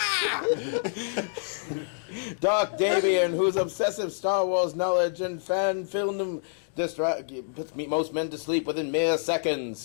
Dark Davian, whose obsessive Star Wars knowledge and fan film puts most men to sleep within mere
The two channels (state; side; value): silent; right; digital silence